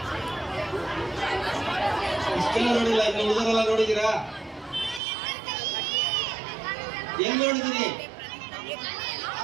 ಇಷ್ಟೆಲ್ಲ ನೋಡಿಲ್ಲ, ಇನ್ನು ಉಳಿದರೆಲ್ಲ ನೋಡಿದೀರಾ? ಎಲ್ಲಿ ನೋಡಿದಿರಿ?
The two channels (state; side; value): drops out; left; at 5.0 s